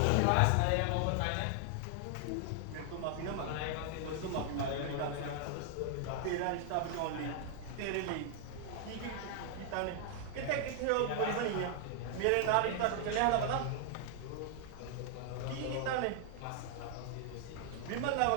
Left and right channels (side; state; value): both; different; correlation 0.00